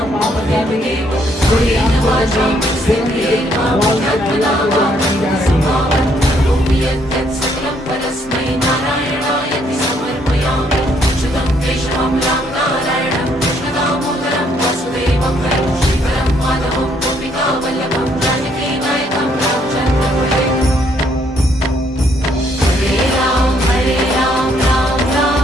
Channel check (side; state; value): both; normal; correlation 0.69